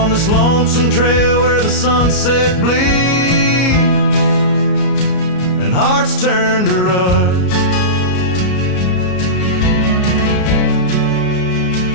this lonesome trail where the sunset bleeds and hearts turn to rust.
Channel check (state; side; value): late; right; 33 ms